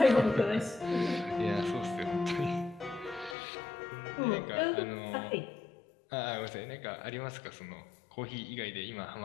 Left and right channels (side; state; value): right; drops out; at 3.4 s